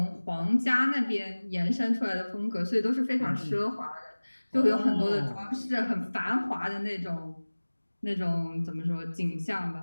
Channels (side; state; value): both; inverted; correlation -1.00